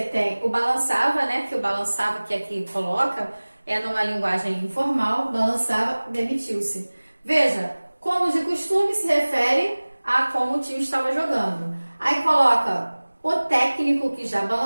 tem o balançava, né? Que o balançava que aqui coloca é numa linguagem informal, balançava, demitiu-se. Veja, como de costume se refere a como o time estava jogando. Aí coloca o técnico, que já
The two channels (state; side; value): inverted; both; correlation -1.00